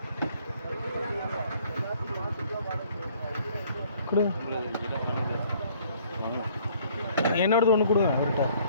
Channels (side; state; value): both; inverted; correlation -0.59